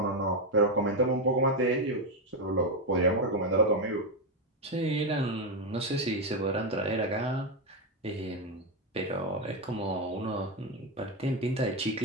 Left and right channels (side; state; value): both; normal; correlation 0.07